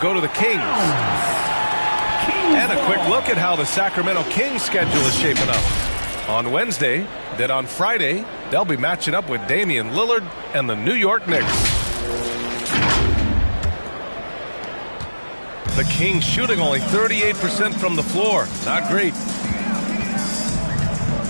to the Kings. And a quick look at how the Sacramento Kings schedule is shaping up. On Wednesday, then on Friday, they'll be matching up with Damian Lillard and the New York Knicks. The Kings shooting only 38% from the floor. Not great.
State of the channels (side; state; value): both; inverted; correlation -1.00